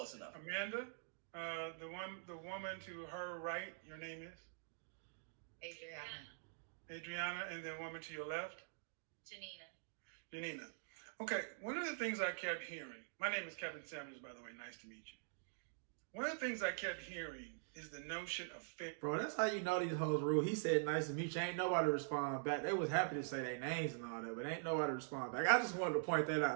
enough. Amanda, the woman to her right. Your name is Adriana, and the woman to your left, Janina. Okay. One of the things I kept hearing. My name is Kevin Samuels, by the way. Nice to meet you. One of the things I kept hearing is the notion of fit. Bro, that's how you know these hoes rule. He said, nice to meet you. Ain't nobody respond back. They was happy to say their names and all that, but ain't nobody respond back. I just wanted to point that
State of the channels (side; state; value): left; silent; digital silence